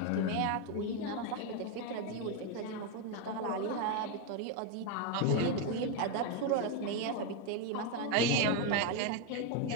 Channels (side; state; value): both; different; correlation 0.02